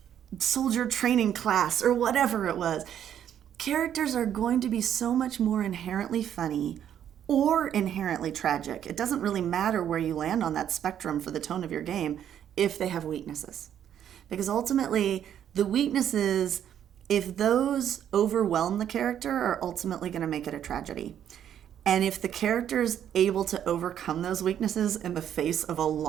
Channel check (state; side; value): quieter; left; 9.9 dB